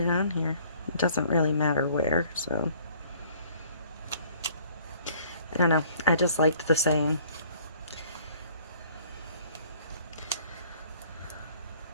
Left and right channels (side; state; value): both; inverted; correlation -0.56